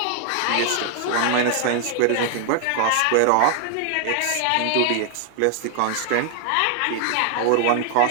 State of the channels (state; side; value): different; both; correlation 0.00